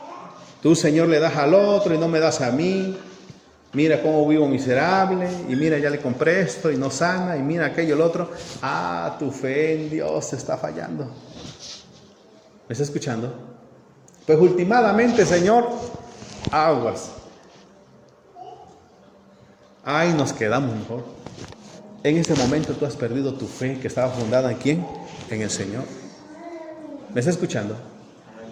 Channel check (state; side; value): identical; both; correlation 1.00